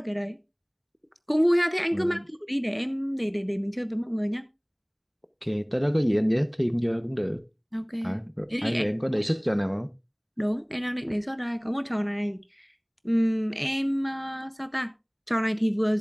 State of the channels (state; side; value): identical; both; correlation 1.00